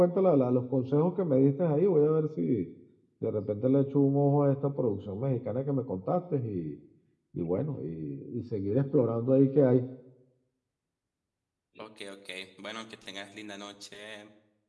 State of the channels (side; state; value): both; identical; correlation 1.00